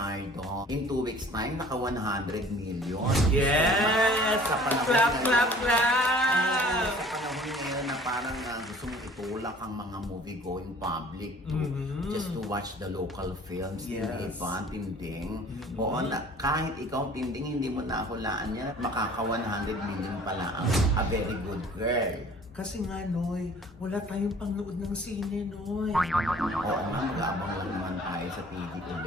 In 2 weeks time, naka 100 million. Yes! Sa panahon Clap, ngayon- clap, clap! Sa panahon ngayon na parang gusto mong itulak ang mga movie-going public to Mhm. just to watch the local films. Yes. Hindi ba, Tinding? Oo, kahit ikaw, Tinding, hindi mo nahulaan yan. Makaka 100 million pala ang a very good girl. Kasi nga, Noy, wala tayong pangnood ng sine, Noy. Oo nga, mag-aabang lang naman tayo sa TV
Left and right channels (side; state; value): both; normal; correlation 0.50